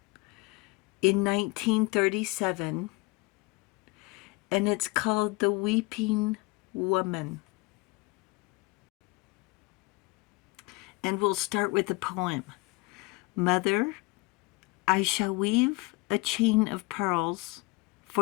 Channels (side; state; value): right; quieter; 24.7 dB